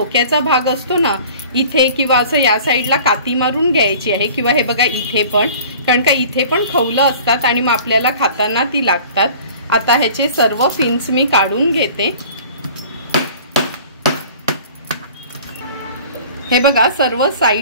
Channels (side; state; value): both; inverted; correlation -0.46